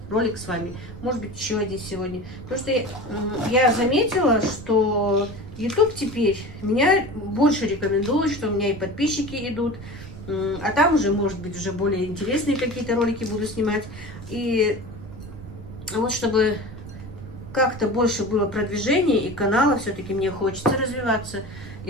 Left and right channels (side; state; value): right; noise; rumble, 14 dB below the sound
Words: ролик с вами, может быть, еще один сегодня. Потому что я заметила, что YouTube теперь меня больше рекомендует, что у меня и подписчики идут, а там уже, может быть, уже более интересные какие-то ролики буду снимать. И вот чтобы как-то больше было продвижения и канала, все-таки мне хочется развиваться.